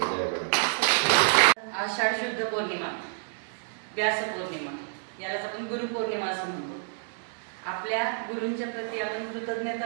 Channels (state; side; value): silent; left; digital silence